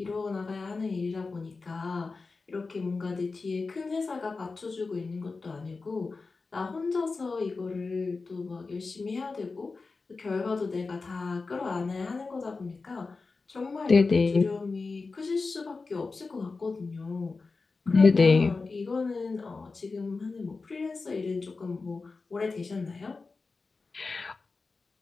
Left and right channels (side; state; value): right; quieter; 4.1 dB